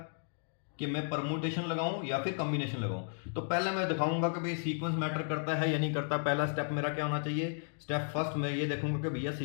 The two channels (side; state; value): right; silent; digital silence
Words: कि मैं परमुटेशन लगाऊं या फिर कॉम्बिनेशन लगाऊं। तो पहले मैं दिखाऊंगा कि भाई सीक्वेंस मैटर करता है या नहीं करता। पहला स्टेप मेरा क्या होना चाहिए, स्टेप फर्स्ट मैं ये देखूंगा कि भैया